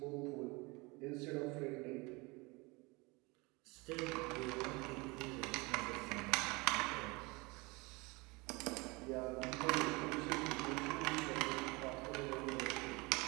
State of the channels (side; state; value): left; quieter; 25.8 dB